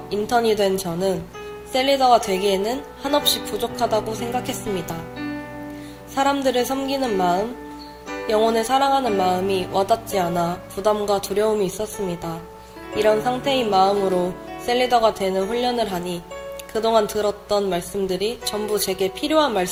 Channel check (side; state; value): both; identical; correlation 1.00